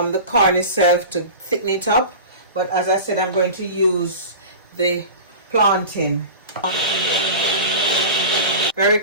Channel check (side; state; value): both; inverted; correlation -0.33